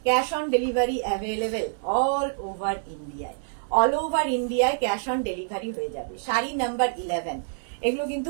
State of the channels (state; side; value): silent; left; digital silence